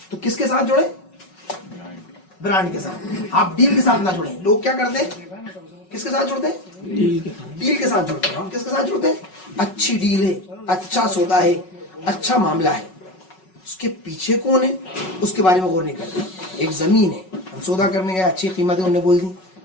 तो किसके साथ जुड़े, ब्रांड के साथ। आप डील के साथ ना जुड़े। लोग क्या करते हैं, किसके साथ जुड़ते हैं, डील के साथ जुड़ते हैं। हम किसके साथ जुड़ते हैं, अच्छी डील है, अच्छा सौदा है, अच्छा मामला है, उसके पीछे कौन है उसके बारे में गौर नहीं करते। एक जमीन है, हम सौदा करने गए, अच्छी कीमत है, उन्होंने बोल दी,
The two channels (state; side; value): late; right; 5.4 ms